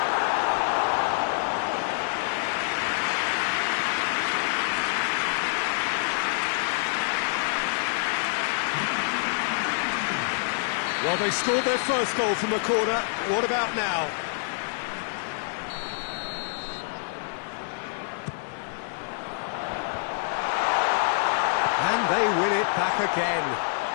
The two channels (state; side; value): silent; right; digital silence